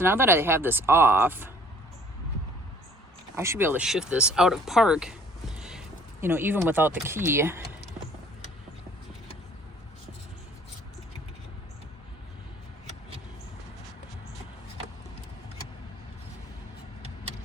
now that I have this off, I should be able to shift this out of park, even without the key.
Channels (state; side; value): normal; both; correlation 0.55